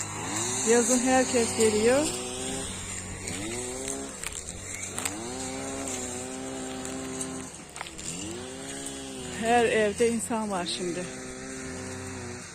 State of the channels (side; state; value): both; identical; correlation 1.00